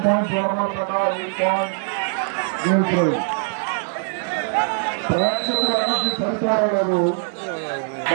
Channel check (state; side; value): silent; left; digital silence